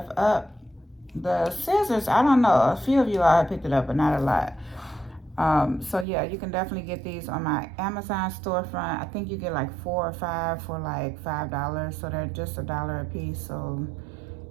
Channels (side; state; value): left; drops out; at 6.1 s